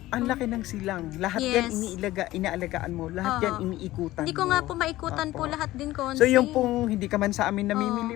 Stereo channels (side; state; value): right; quieter; 16.5 dB